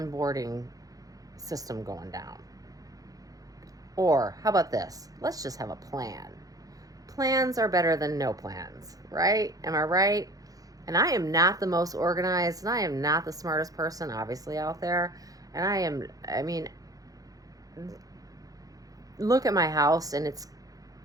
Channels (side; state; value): left; late; 0.17 ms